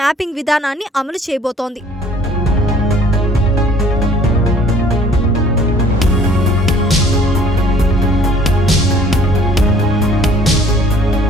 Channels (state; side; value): normal; both; correlation 0.56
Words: విధానాన్ని అమలు చేయబోతోంది.